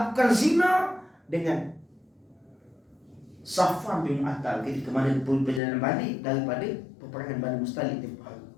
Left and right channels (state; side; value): drops out; right; at 5.6 s